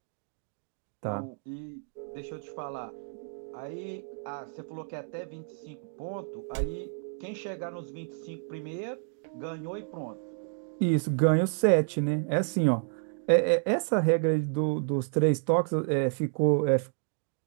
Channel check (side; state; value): left; silent; 58 dB below the other